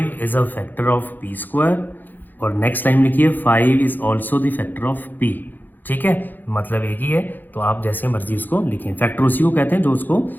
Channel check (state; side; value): late; right; 0.087 ms